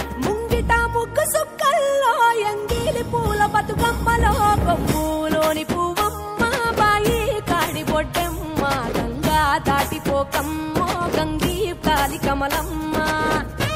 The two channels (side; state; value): both; identical; correlation 1.00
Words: ముంగిట ముగ్గు సుక్కల్లో ఎంగిలి పూల బతుకమ్మలో కొమ్ములోని పువ్వమ్మ బాయి కాడి బొడ్డెమ్మ గంగా దాటిపోకమ్మ గంగీ కాలి కమలమ్మ